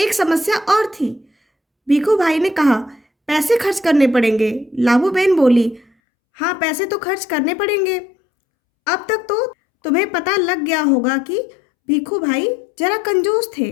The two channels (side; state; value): right; drops out; at 5.9 s